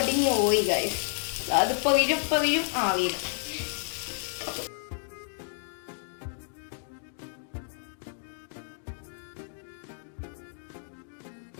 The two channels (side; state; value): right; silent; 57 dB below the other